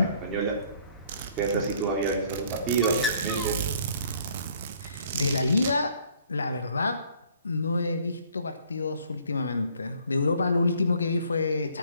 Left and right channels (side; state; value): both; inverted; correlation -0.60